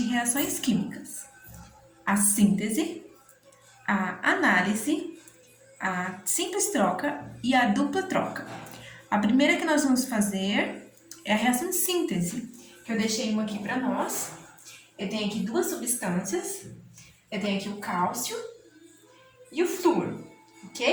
reações químicas: a síntese, a análise, a simples troca e a dupla troca. A primeira que nós vamos fazer é a reação de síntese, que eu deixei uma aqui para nós. Eu tenho aqui duas substâncias. Eu tenho aqui o cálcio e o flúor,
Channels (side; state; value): both; identical; correlation 1.00